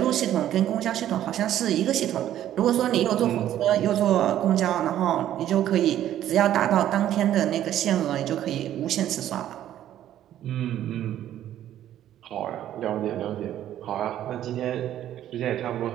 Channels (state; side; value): quieter; left; 11.9 dB